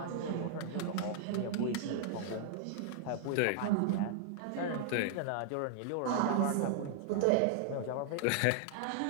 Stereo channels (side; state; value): both; different; correlation -0.01